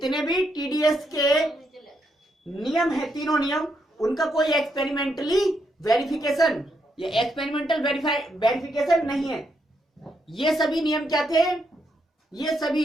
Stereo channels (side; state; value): both; normal; correlation 0.79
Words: भी टीडीएस के नियम है, तीनों नियम, उनका कोई एक्सपेरिमेंटली वेरिफिकेशन या एक्सपेरिमेंटल वेरिफिकेशन नहीं है। ये सभी नियम क्या थे? ये